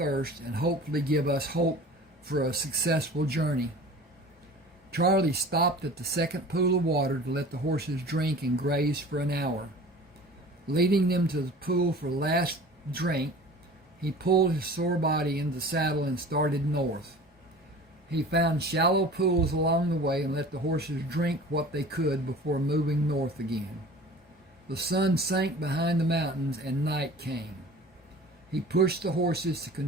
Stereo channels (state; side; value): normal; both; correlation 0.42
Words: and hopefully give us hope for a successful journey. Charlie stopped at the second pool of water to let the horses drink and graze for an hour. Leading them to the pool for the last drink, he pulled his sore body into the saddle and started north. He found shallow pools along the way and let the horses drink what they could before moving north again. The sun sank behind the mountains and night came. He pushed the horses to